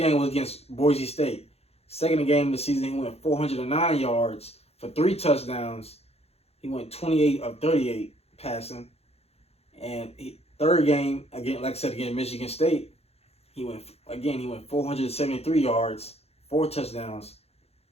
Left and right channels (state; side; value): late; right; 0.29 ms